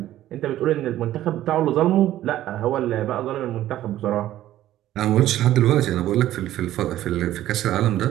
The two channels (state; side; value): quieter; left; 13.5 dB